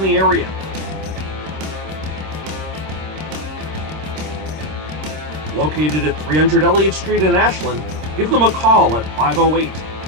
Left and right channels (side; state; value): left; late; 26 ms